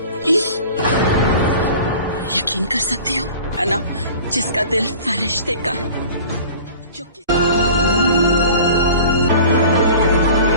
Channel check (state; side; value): inverted; both; correlation -0.42